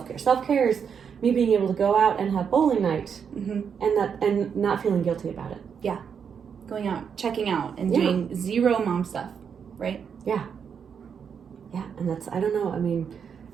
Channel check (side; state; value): left; quieter; 7.0 dB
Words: Self-care is me being able to go out and have bowling night and not feeling guilty about it. Yeah. Going out, checking out, and doing zero mom stuff, right? Yeah. Yeah, and that's, I don't know, I mean,